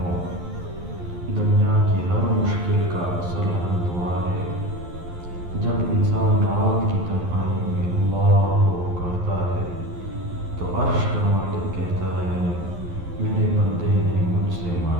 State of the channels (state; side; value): late; left; 11 ms